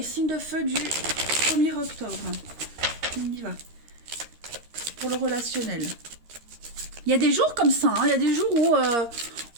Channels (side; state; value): left; late; 13 ms